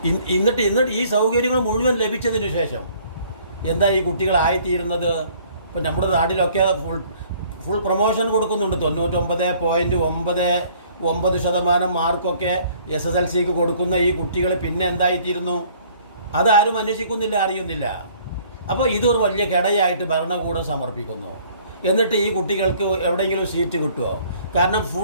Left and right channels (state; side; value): inverted; both; correlation -0.57